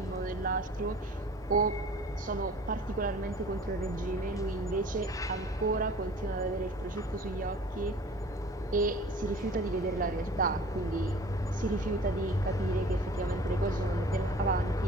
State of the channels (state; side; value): normal; both; correlation 0.45